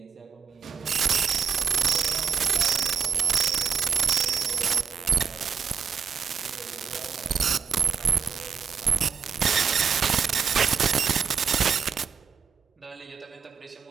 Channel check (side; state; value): left; quieter; 6.7 dB